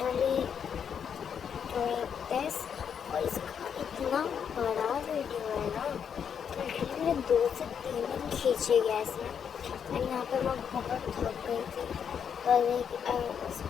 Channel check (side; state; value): right; quieter; 7.6 dB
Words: doing this और इसका इतना बड़ा वीडियो है ना कि लिटरली मेरे 2 से 3 दिन खींचे गया इसमें। एंड यहाँ पे मैं बहुत थक गई थी और like I was